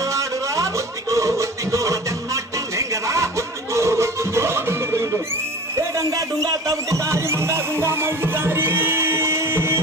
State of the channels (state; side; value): normal; both; correlation 0.40